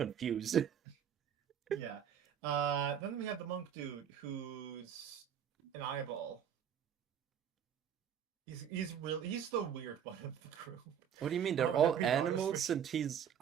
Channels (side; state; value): left; quieter; 8.8 dB